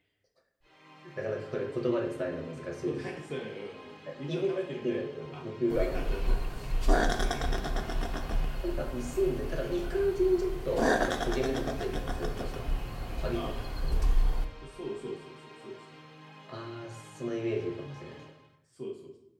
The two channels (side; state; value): both; identical; correlation 1.00